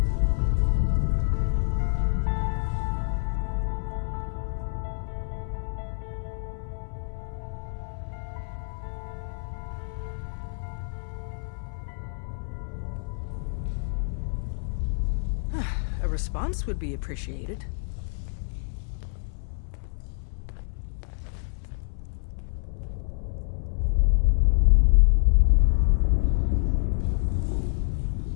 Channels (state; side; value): silent; right; 60 dB below the other